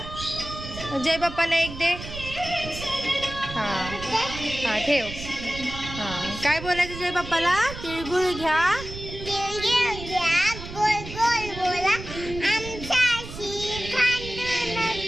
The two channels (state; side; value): noise; right; rumble, 11 dB below the sound